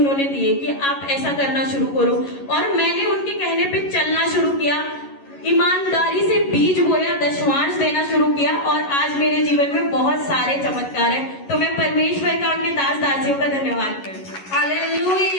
दिए कि आप ऐसा करना शुरू करो, और मैंने उनके कहने पे चलना शुरू किया, ईमानदारी से बीज बोया, दशमांश देना शुरू किया, और आज मेरे जीवन में बहुत सारे चमत्कार हैं। तो मैं परमेश्वर का, अपने दास दासियों का धन्यवाद करती हूँ।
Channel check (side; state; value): right; late; 11 ms